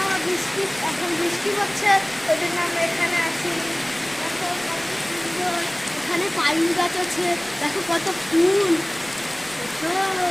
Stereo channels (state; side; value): noise; left; rumble, 26 dB below the sound